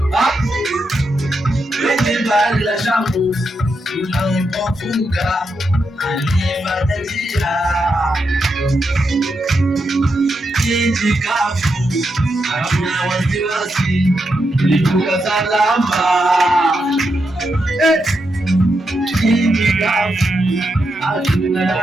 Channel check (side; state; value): both; normal; correlation 0.84